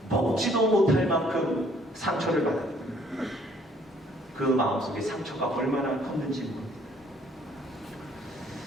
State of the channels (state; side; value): normal; both; correlation 0.61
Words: 먹지도 못할 만큼 상처를 받았고요. 그 마음속에 상처가 얼마나 컸는지 모릅니다.